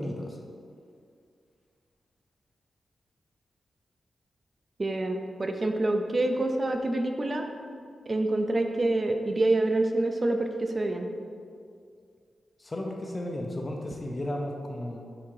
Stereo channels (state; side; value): normal; both; correlation 0.94